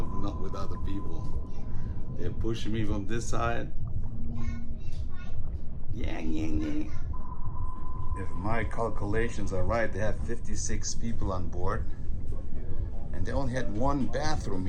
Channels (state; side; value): identical; both; correlation 1.00